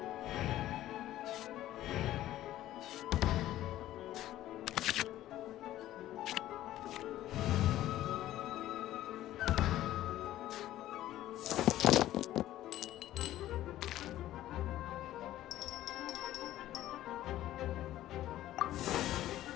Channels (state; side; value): quieter; right; 13.9 dB